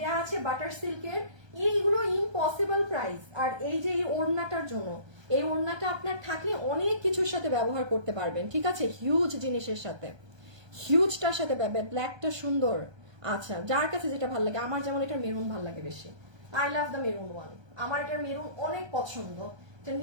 আছে বাটার সিল্কের। এইগুলো ইম্পসিবল প্রাইস। আর এই যে এই ওড়নাটার জন্য, এই ওড়নাটা আপনার থাকলে অনেক কিছুর সাথে ব্যবহার করতে পারবেন। ঠিক আছে, হিউজ জিনিসের সাথে, হিউজটার সাথে ব্ল্যাকটা সুন্দর। আচ্ছা যার কাছে যেটা ভালো লাগে, আমার যেমন এটা মেরুন ভালো লাগে বেশি, I love the maroon one. আমার এটা মেরুন অনেক পছন্দ, এটা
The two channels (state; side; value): late; left; 1.3 ms